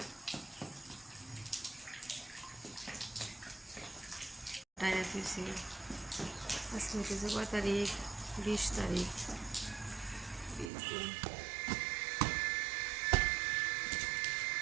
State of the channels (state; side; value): drops out; left; at 10.7 s